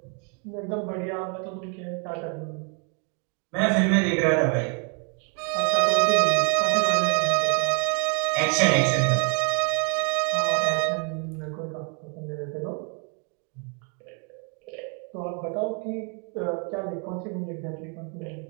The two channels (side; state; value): left; quieter; 38.5 dB